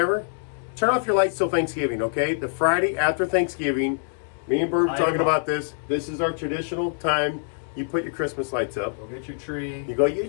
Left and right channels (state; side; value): silent; right; 61 dB below the other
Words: turn off your lights till Thanksgiving, okay? The Friday after Thanksgiving, me and Bird were talking about this. This is our traditional time. You put your Christmas lights up. Go get your tree. You go get your